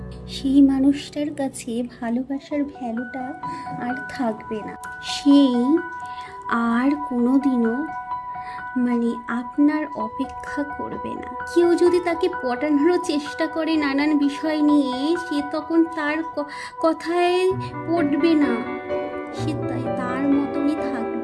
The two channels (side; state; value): both; identical; correlation 1.00